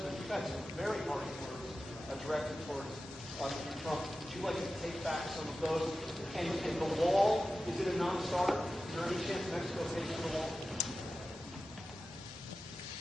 Directed towards Mr. Trump. Would you like to take back some of those? And the wall, is it a non-starter? Is there any chance Mexico pays for the wall?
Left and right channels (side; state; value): both; normal; correlation 0.93